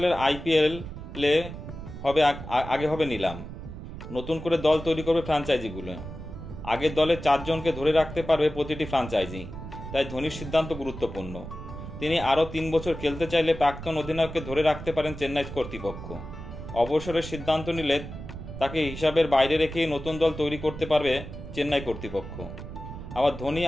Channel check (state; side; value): noise; right; rumble, 10 dB below the sound